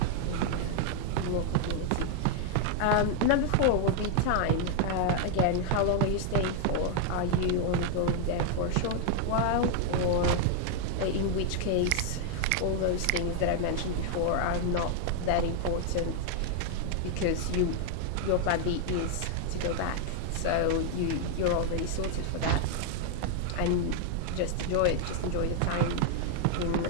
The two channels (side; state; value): both; different; correlation 0.00